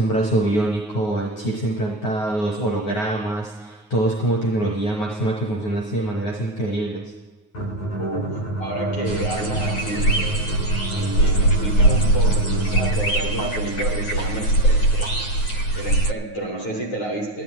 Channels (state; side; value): late; right; 9.5 ms